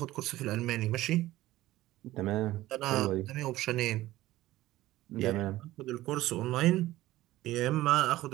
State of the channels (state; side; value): quieter; left; 16.3 dB